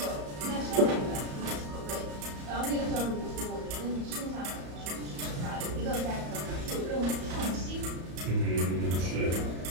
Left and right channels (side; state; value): left; late; 34 ms